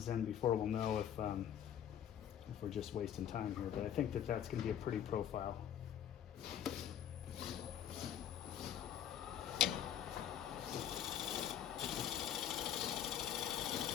in before we'll know if we're just wasting time here, but I think that that's going to be a pretty profile.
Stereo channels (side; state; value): right; quieter; 9.9 dB